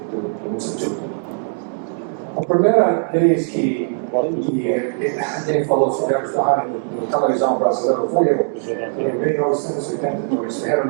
Instituto. A primeira vez que alguém falou sobre a área na televisão brasileira foi eu. Em 1982, era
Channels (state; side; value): silent; left; 66 dB below the other